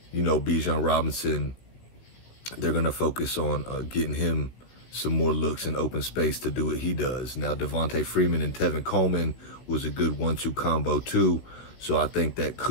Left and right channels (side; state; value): right; late; 16 ms